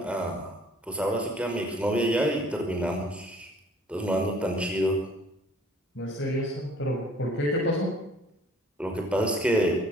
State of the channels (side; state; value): both; normal; correlation 0.56